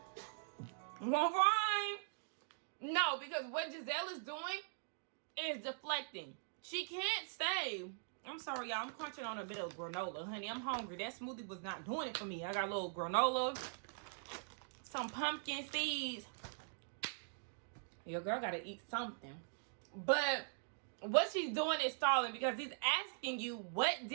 All right. No, because what Giselle is doing is deflecting. She can't say, I'm sorry, y'all, I'm crunching on a bit of granola. Honey, I'm hungry. That smoothie was not doing it for me. I got a little granola, some pumpkin seeds. Your girl got to eat something. But what she's doing is stalling because he's asking you, what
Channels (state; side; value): silent; left; digital silence